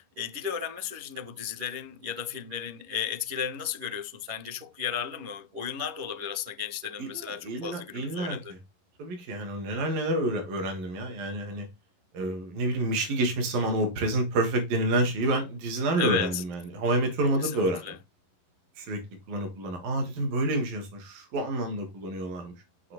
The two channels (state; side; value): late; left; 11 ms